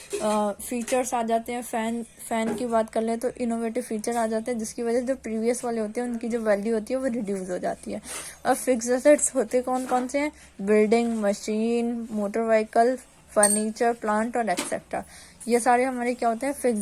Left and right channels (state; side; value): identical; both; correlation 1.00